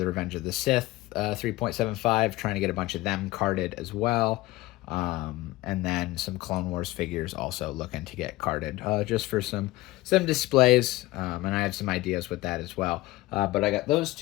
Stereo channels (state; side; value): quieter; right; 18.8 dB